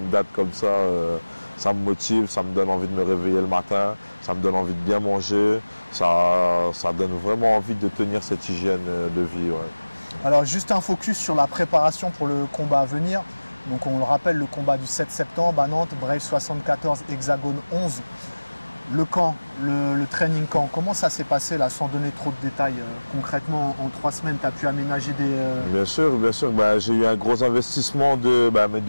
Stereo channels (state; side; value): inverted; both; correlation -1.00